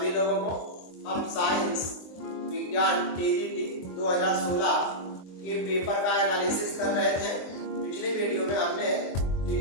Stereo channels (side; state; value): right; late; 23 ms